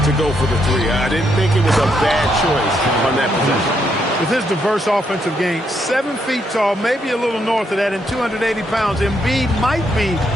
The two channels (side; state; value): both; normal; correlation 0.77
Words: to go for the 3. I didn't think it was a bad choice on that possession. With his diverse offensive game, 7 feet tall, maybe a little north of that, and 280 pounds, Embiid might be